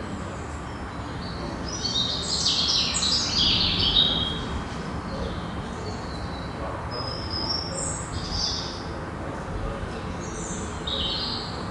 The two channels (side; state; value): both; identical; correlation 1.00